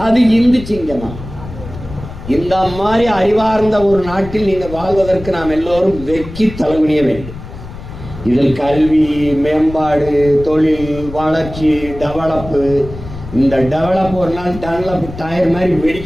அது இந்து சிங்கமா? இந்த மாதிரி அறிவார்ந்த ஒரு நாட்டில் நீங்கள் வாழ்வதற்கு நாம் எல்லோரும் வெக்கி தலைகுனிய வேண்டும். இதில் கல்வி, மேம்பாடு, தொழில், வளர்ச்சி, டெவலப்பு. இந்த டெவலப் ஒரு நாள் டெவலப் டயர் மாதிரி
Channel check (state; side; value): noise; left; rumble, 12 dB below the sound